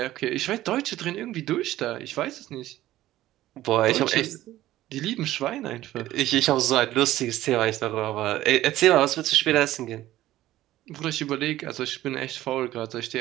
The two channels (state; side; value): quieter; left; 14.8 dB